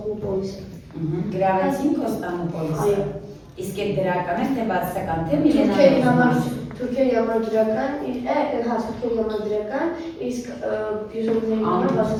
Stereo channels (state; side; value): identical; both; correlation 1.00